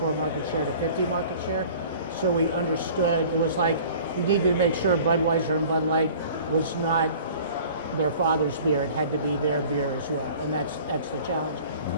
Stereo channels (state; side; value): inverted; both; correlation -0.46